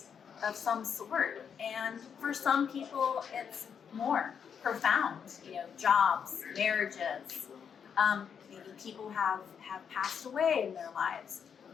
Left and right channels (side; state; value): right; quieter; 7.3 dB